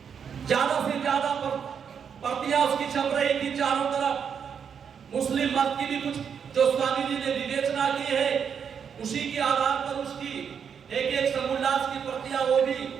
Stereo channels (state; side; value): quieter; left; 7.2 dB